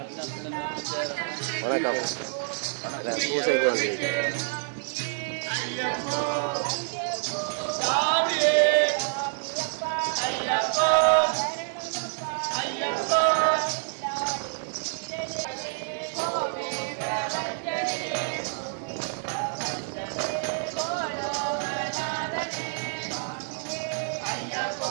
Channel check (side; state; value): left; silent; digital silence